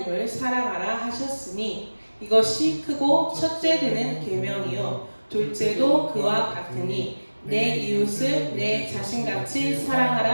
사랑하라 하셨으니 이것이 크고 첫째 되는 계명이요 둘째도 그와 같으니 내 이웃을 내 자신같이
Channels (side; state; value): both; inverted; correlation -1.00